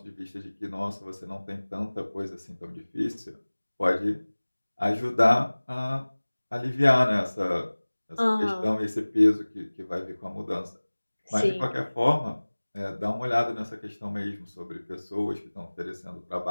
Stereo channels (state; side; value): inverted; both; correlation -1.00